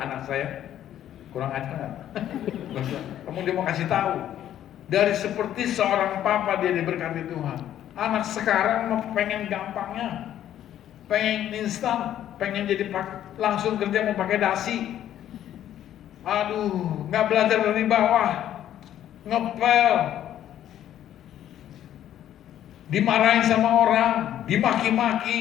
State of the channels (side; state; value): right; quieter; 11.4 dB